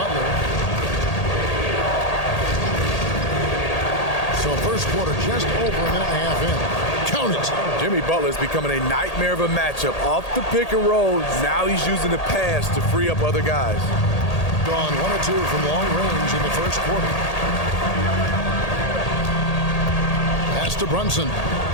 So first quarter just over a minute and a half in. Count it. Jimmy Butler's becoming a nightmare of a matchup. Off the pick and roll, now he's using the pass to free up other guys. Gone 1 or 2 from long range in the first quarter. Pass to Brunson.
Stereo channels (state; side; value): late; right; 1.8 ms